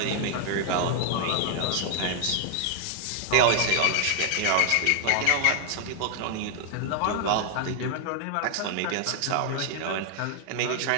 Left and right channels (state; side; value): different; both; correlation 0.00